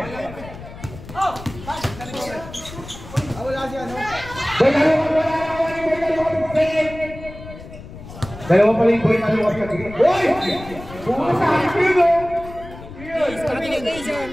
Dalawa pala yung boy na luwag ka. Boy! Bukas sa akin mo!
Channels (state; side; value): noise; left; rumble, 15 dB below the sound